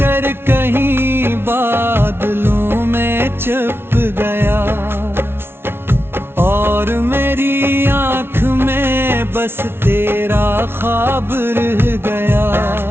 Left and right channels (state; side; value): late; left; 0.12 ms